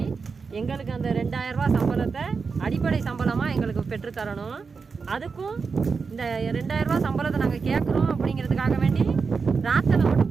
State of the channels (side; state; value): left; quieter; 5.1 dB